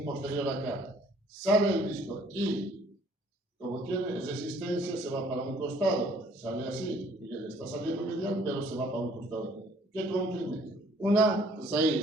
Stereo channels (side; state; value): both; normal; correlation 0.59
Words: posterior acá, sale el disco y, como tiene resistencia, se va para un costado, sale así, y él está saliendo medial, pero se va para un costado. ¿Qué comprime? Una